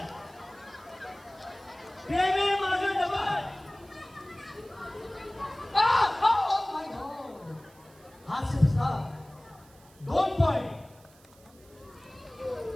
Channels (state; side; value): noise; right; hiss, 27 dB below the sound